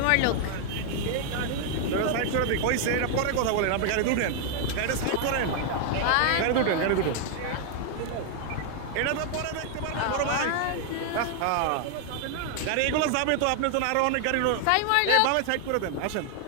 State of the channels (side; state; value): both; different; correlation 0.00